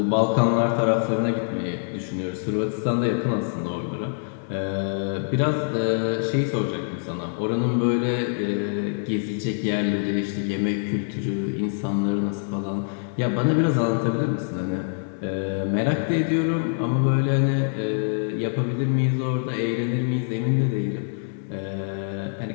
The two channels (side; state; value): right; silent; digital silence